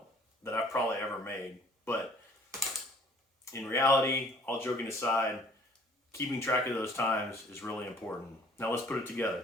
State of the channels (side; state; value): both; normal; correlation 0.55